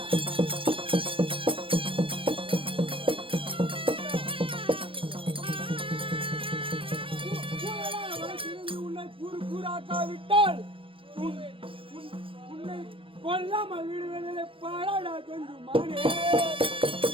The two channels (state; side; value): late; left; 0.26 ms